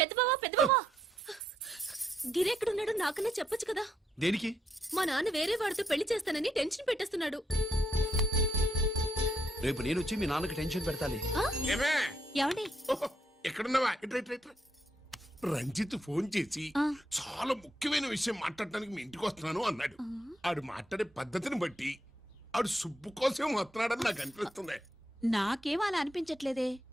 బావా, గిరి ఎక్కడున్నాడో నాకన్నా చెప్పొచ్చు కదా. దేనికి? మా నాన్న వేరే వాడితో పెళ్లి చేస్తానని టెన్షన్ పెట్టేస్తున్నాడు. రేపు నేను వచ్చి మీ నాన్నకి టెన్షన్ పెడతాలి. ఏమండి? ఎక్కడున్నావా? ఇట్రా ఇట్రా ఇట్రా. రంజిత్ ఫోన్ చేసి ఆ. చాలా ముఖ్యమైన విషయం మాట్లాడటానికి మీ ఇంటికి వస్తున్నాను అన్నాడు. ఆడు మాట్లాడే పద్ధతిని బట్టి ఆడు సుబ్బు కోసం వస్తున్నాడని నాకు అనిపిస్తుంది. నాకేం అలా అనిపించట్లేదే.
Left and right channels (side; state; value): both; normal; correlation 0.77